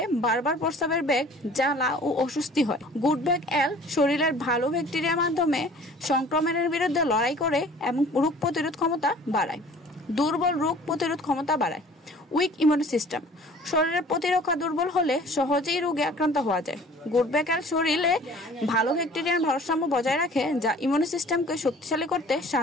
বারবার প্রস্রাবের বেগ, জ্বালা ও অস্বস্তি হয়। গুডব্যাক এল শরীরের ভালো ব্যাকটেরিয়ার মাধ্যমে সংক্রমণের বিরুদ্ধে লড়াই করে এবং রোগ প্রতিরোধ ক্ষমতা বাড়ায়। দুর্বল রোগ প্রতিরোধ ক্ষমতা বাড়ায়। উইক ইমিউন সিস্টেম, শরীরের প্রতিরক্ষা দুর্বল হলে সহজেই রোগে আক্রান্ত হওয়া যায়। গুডব্যাক এল শরীরে ভালো ব্যাকটেরিয়ার ভারসাম্য বজায় রাখে, যা ইমিউন সিস্টেমকে শক্তিশালী করতে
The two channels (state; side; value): normal; both; correlation 0.49